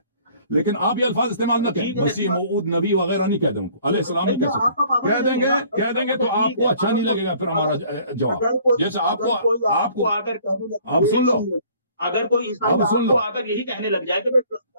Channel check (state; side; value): inverted; both; correlation -0.55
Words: لیکن آپ یہ الفاظ استعمال نہ کریں. مسیح موعود نبی وغیرہ نہیں کہتے ان کو، علیہ السلام نہیں کہہ سکتے. کہہ دیں گے تو آپ کو اچھا نہیں لگے گا پھر ہمارا جواب. جیسے آپ کو آپ سن لو، اگر کوئی عیسائی آ کر یہی کہنے لگ جائے کہ میں